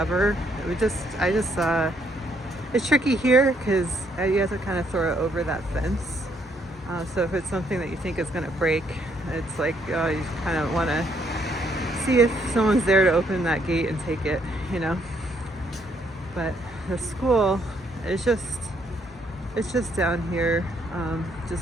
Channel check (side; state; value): both; normal; correlation 0.70